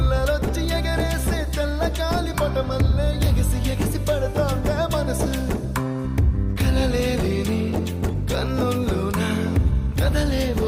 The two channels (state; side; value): identical; both; correlation 1.00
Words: ఎగరేసే తెల్ల కాలి పటమల్లే ఎగిసి ఎగిసి పడతాందే మనసు కలలేని కన్నుల్లోన